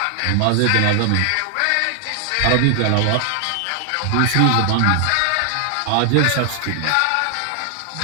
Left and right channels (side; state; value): both; different; correlation 0.00